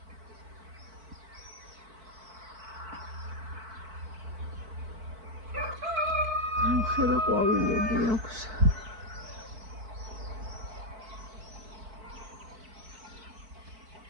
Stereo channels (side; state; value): left; late; 4.5 ms